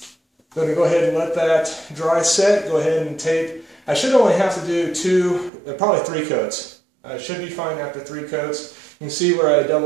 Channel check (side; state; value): left; drops out; at 5.5 s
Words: I'm going to go ahead and let that dry set. Go ahead and tape. I should only have to do probably 3 coats. I should be fine after 3 coats. You can see where I